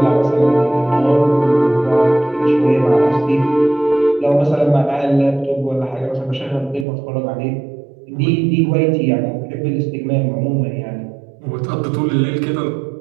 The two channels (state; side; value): drops out; left; at 6.9 s